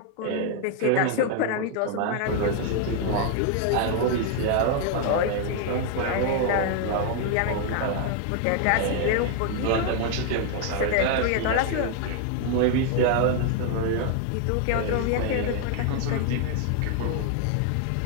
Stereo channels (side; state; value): both; different; correlation 0.00